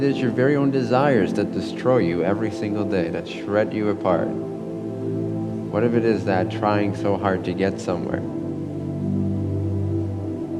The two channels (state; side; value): identical; both; correlation 1.00